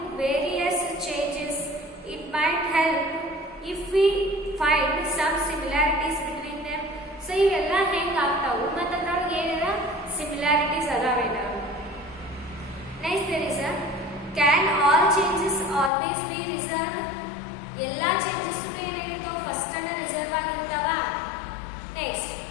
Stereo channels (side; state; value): right; drops out; at 15.9 s